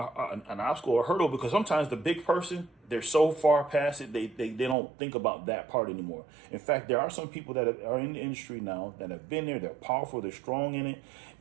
obstacle or hurdle, because sometimes the big person, they're so far past it, they don't think about that part anymore. In fact, there are some people that are in the industry now that have been there, they're powerful, they're strong in it,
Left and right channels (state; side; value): drops out; left; at 4.8 s